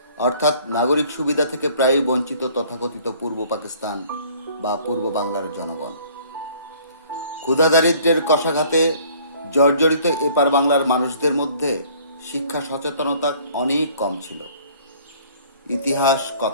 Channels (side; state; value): both; inverted; correlation -0.55